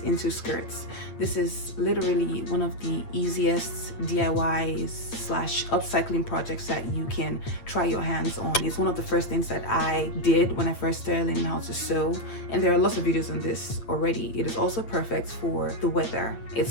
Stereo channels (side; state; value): right; late; 8.8 ms